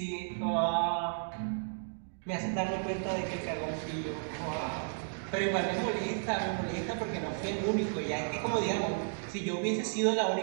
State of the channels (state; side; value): silent; left; digital silence